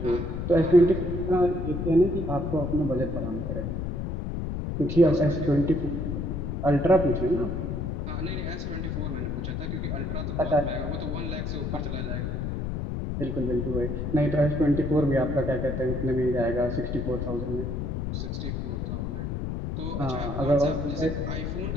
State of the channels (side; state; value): left; noise; rumble, 3 dB below the sound